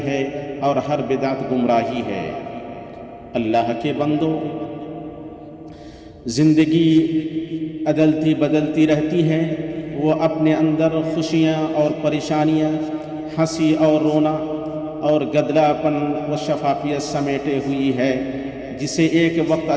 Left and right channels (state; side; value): identical; both; correlation 1.00